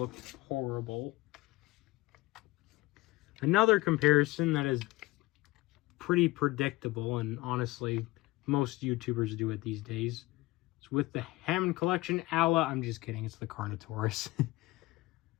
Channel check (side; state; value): right; quieter; 20.0 dB